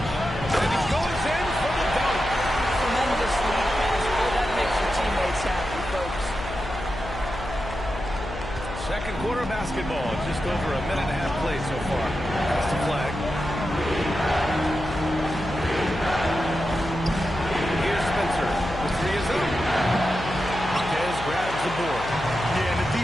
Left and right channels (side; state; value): left; noise; hum, 9 dB below the sound